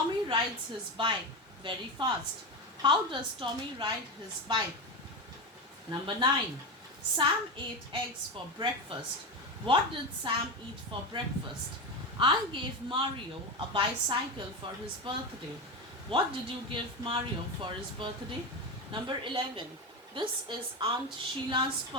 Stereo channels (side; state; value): both; normal; correlation 0.18